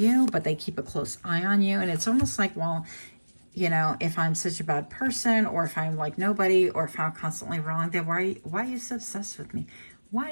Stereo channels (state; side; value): inverted; both; correlation -1.00